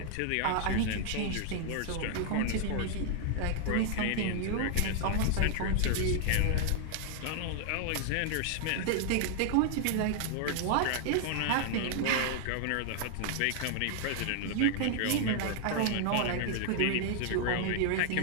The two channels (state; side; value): different; both; correlation 0.00